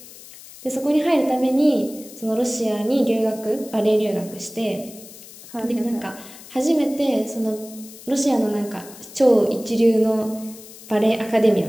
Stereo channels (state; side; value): noise; left; hiss, 18 dB below the sound